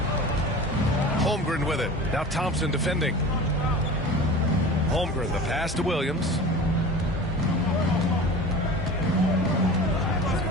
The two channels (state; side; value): normal; both; correlation 0.36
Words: Holmgren with it. Now Thompson defending. Holmgren, the pass to Williams.